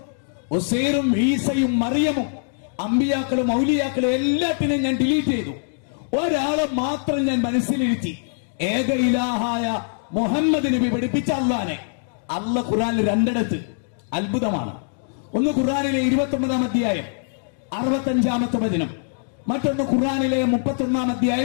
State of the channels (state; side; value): silent; right; digital silence